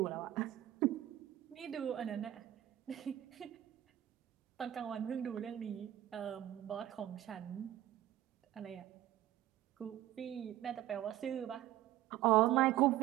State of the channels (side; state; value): left; quieter; 13.3 dB